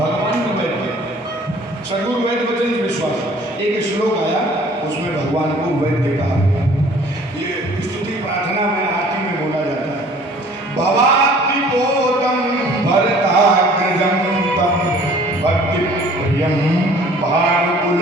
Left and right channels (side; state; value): both; normal; correlation 0.52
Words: भी वैद्य। सदगुरु वैद्य वचन विश्वास, एक श्लोक आया उसमें भगवान को वैद्य कहा। ये स्तुति प्रार्थना में आरती में बोला जाता है। भवाति बोधम भरताग्रजम तम भक्ति प्रियम भानुकुल